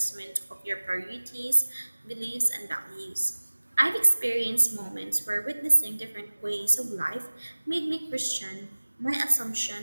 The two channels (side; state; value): both; inverted; correlation -1.00